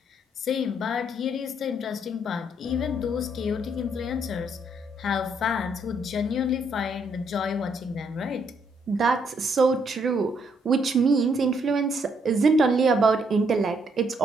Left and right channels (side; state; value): both; normal; correlation 0.72